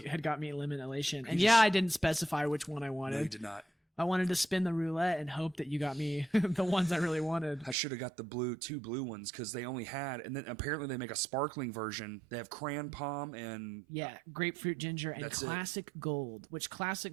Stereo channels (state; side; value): drops out; left; at 7.8 s